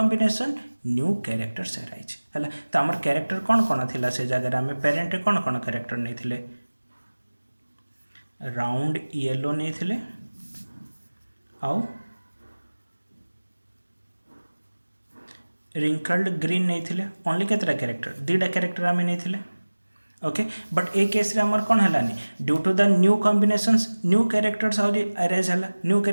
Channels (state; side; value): inverted; both; correlation -1.00